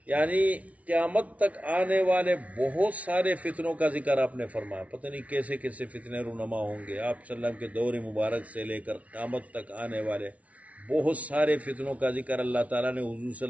یعنی قیامت تک آنے والے بہت سارے فتنوں کا ذکر آپ نے فرمایا۔ پتہ نہیں کیسے کیسے فتنے رونما ہوں گے۔ آپ صلی اللہ علیہ وسلم کے دور مبارک سے لے کر قیامت تک آنے والے بہت سارے فتنوں کا ذکر اللہ تعالیٰ نے حضور صلی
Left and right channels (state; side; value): late; left; 0.067 ms